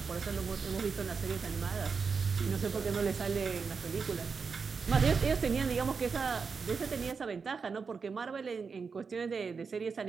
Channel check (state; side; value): quieter; left; 5.3 dB